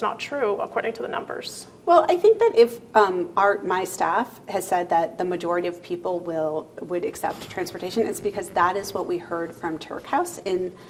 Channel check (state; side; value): identical; both; correlation 1.00